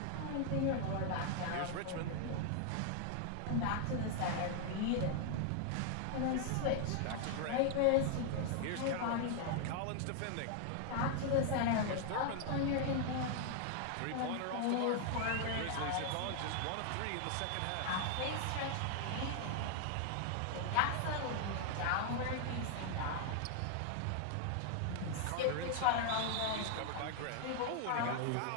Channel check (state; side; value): different; both; correlation 0.00